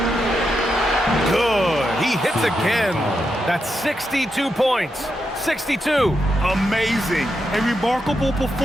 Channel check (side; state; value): both; normal; correlation 0.85